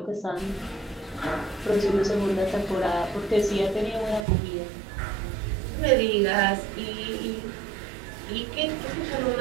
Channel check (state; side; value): drops out; left; at 4.2 s